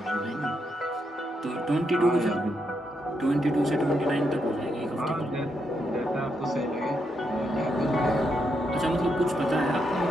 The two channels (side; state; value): both; normal; correlation 0.81